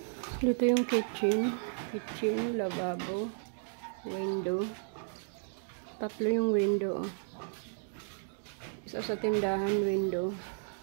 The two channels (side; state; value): left; silent; digital silence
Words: Dito yung kitchen. Kitchen, lababo, window. Tatlo yung window. Isa sa tindahan, window.